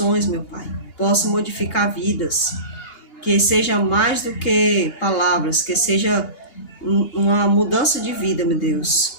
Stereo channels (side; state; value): right; late; 2.8 ms